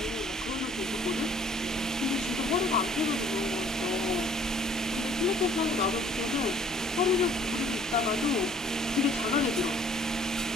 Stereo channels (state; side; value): normal; both; correlation 0.56